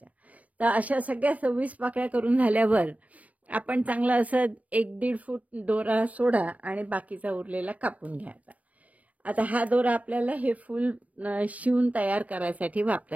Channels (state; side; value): late; left; 0.071 ms